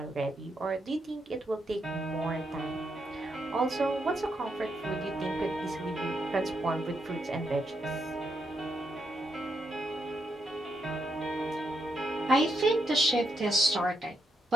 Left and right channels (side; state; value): both; normal; correlation 0.80